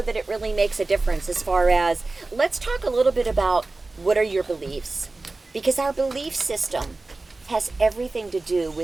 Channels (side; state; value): left; quieter; 3.3 dB